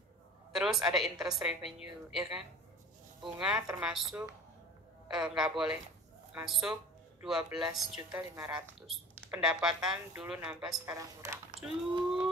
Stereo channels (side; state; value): both; normal; correlation 0.40